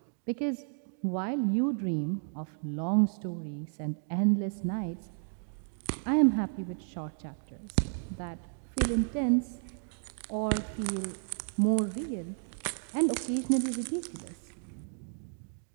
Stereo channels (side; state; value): left; silent; 56 dB below the other